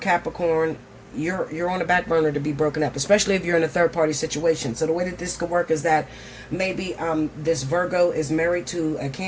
you're on the back burner to be broken up, especially if you're in a third-party situation. So the way that this could work is that maybe this Virgo is married to a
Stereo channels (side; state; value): both; identical; correlation 1.00